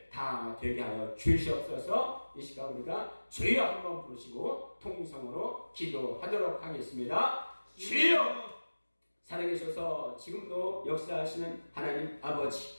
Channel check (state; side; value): inverted; both; correlation -1.00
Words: 다 되게 하여 주시옵소서. 이 시간 우리가 주여 한번 부르시고 통성으로 기도하도록 하겠습니다. 주여! 살아계셔서 지금도 역사하시는 하나님 아버지,